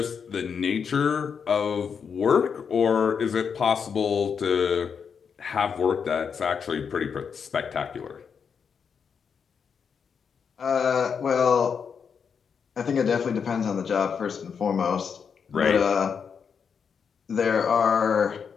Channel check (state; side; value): quieter; right; 6.5 dB